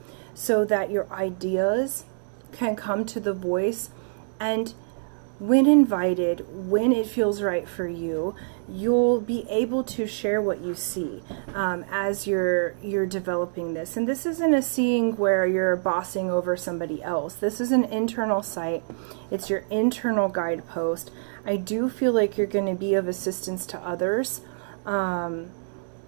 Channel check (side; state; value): left; silent; digital silence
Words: so that your ideas can come to the voice, and when invited, when it feels right for you, you'll be able to share what you see as you're developing this. And this isn't a seeing where you're bossing over somebody else. This is an internal sight. It's your internal guidepost. I do feel like you're going to be of assistance to others,